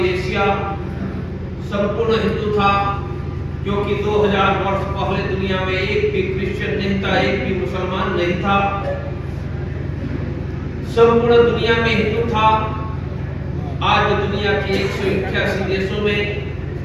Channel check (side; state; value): both; identical; correlation 1.00